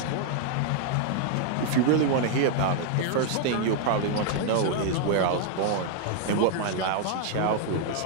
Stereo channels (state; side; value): different; both; correlation 0.00